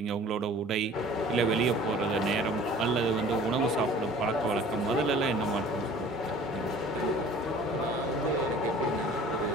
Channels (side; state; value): both; normal; correlation 0.48